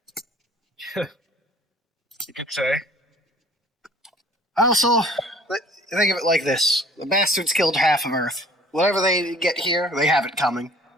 You could say. Also, think of it like this. The bastards killed half of Earth. Whatever they get here, they have it coming.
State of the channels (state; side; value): normal; both; correlation 0.51